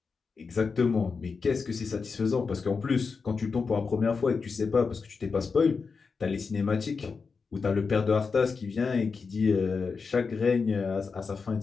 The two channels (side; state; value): right; quieter; 5.0 dB